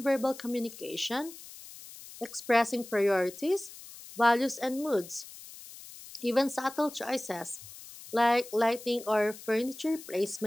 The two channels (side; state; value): left; noise; hiss, 16 dB below the sound